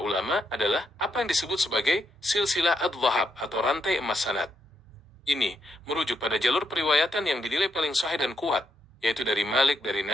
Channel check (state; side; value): normal; both; correlation 0.80